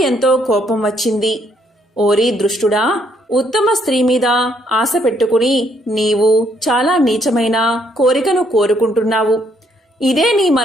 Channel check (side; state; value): both; normal; correlation 0.70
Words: ఎంతో కోపం వచ్చింది. ఓరి దృష్టుడా, ఉత్తమ స్త్రీ మీద ఆశ పెట్టుకుని నీవు చాలా నీచమైన కోరికను కోరుకుంటున్నావు. ఇదే నీ